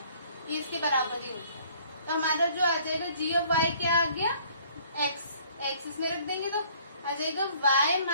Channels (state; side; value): inverted; both; correlation -0.57